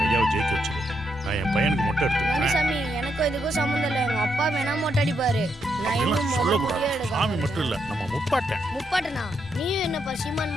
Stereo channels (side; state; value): both; normal; correlation 0.79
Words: ஐயாவை ஜெயிக்க வச்சிரு. நான் என் பையனுக்கு மொட்டை எடுத்துக்கிறேன். சாமி எனக்கும் இதுக்கும் சம்மந்தம் இல்லை. எங்க அப்பா வேணா மொட்டை அடிப்பாரு. நான் இன்னும் முதல் சொல்லக்கூடாது. முடியே எடுக்க சாமி மட்டும் இல்ல, நம்ம முப்பாட்டேன். முப்பாட்டனா நீயும் என்ன சீமான்